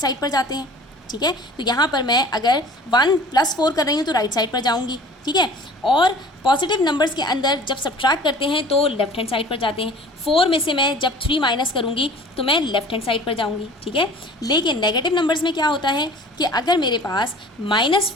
पर जाते हैं। ठीक है, तो यहाँ पर मैं अगर 1 + 4 कर रही हूँ तो राइट साइड पर जाऊँगी। ठीक है, और पॉजिटिव नंबर्स के अंदर जब सब्ट्रैक्ट करते हैं तो लेफ्ट हैंड साइड पर जाते हैं। 4 में से मैं जब 3 माइनस करूँगी तो मैं लेफ्ट हैंड साइड पर जाऊँगी। ठीक है, लेकिन नेगेटिव नंबर्स में क्या होता है कि अगर मेरे पास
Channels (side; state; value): both; normal; correlation 0.46